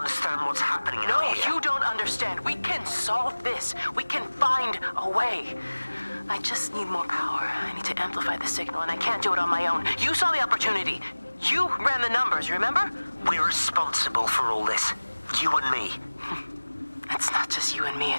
what's happening No, out here. you don't understand. We can solve this. We can find a way. I just need more power. I need to amplify the signal, and I can't do it on my own. You saw the opportunity. You ran the numbers, remember? We're responsible for all this. You and me. It's not just you and me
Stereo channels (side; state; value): both; inverted; correlation -1.00